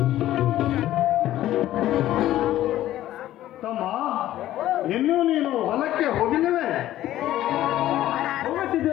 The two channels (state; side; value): quieter; right; 13.8 dB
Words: ತಮ್ಮ, ಇನ್ನೂ ನೀನು ಹೊಲಕ್ಕೆ ಹೋಗಿಲ್ಲವೇ?